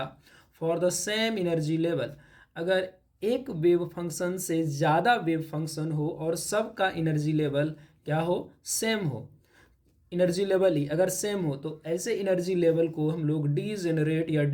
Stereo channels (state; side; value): identical; both; correlation 1.00